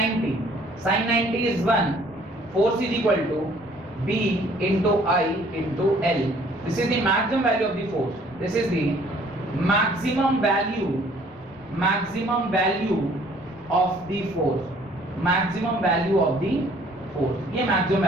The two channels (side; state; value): both; normal; correlation 0.58